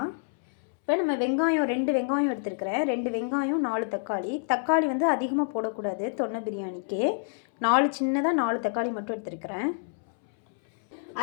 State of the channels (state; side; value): silent; right; 60 dB below the other